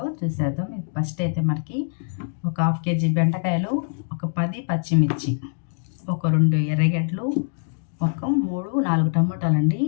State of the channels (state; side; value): silent; right; digital silence